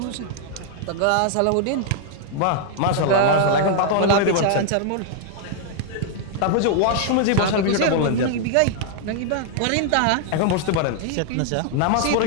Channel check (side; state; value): both; different; correlation 0.00